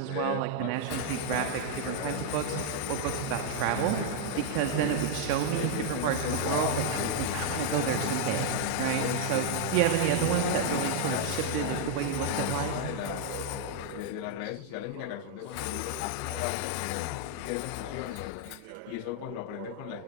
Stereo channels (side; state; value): both; different; correlation 0.00